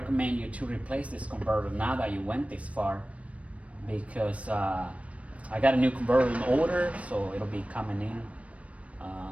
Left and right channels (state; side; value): late; left; 0.065 ms